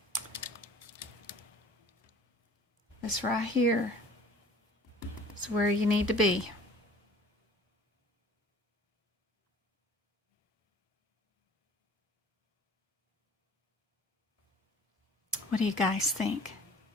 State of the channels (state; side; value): normal; both; correlation 0.47